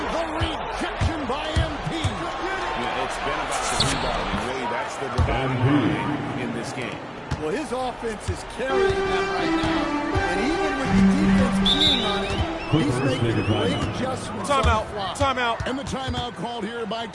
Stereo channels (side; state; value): both; identical; correlation 1.00